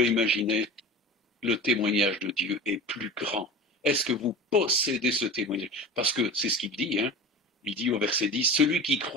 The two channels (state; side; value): normal; both; correlation 0.33